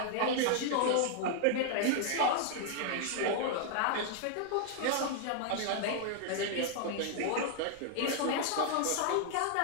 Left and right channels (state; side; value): different; both; correlation 0.00